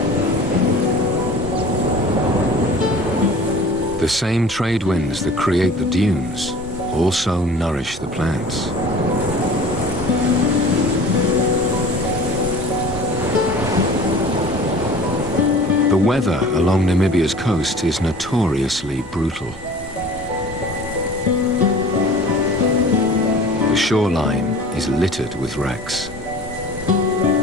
The same trade winds that create the dunes also nourish the plants. The weather along Namibia's coast is notoriously brutal. The shoreline is littered with wrecks.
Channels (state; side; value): normal; both; correlation 0.43